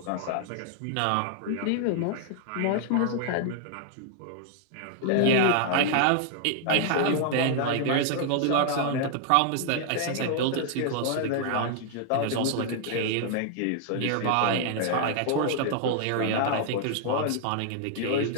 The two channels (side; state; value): both; different; correlation 0.00